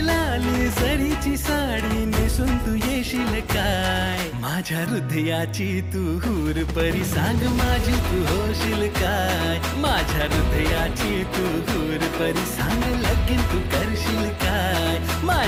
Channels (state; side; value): identical; both; correlation 1.00